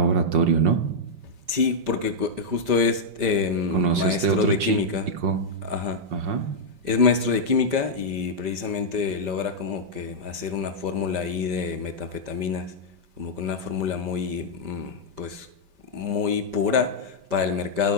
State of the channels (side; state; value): left; late; 5.1 ms